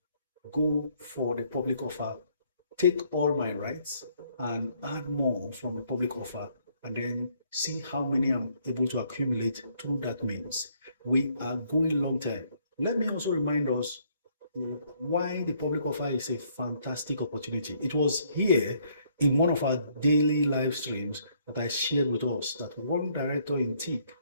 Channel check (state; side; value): inverted; both; correlation -0.67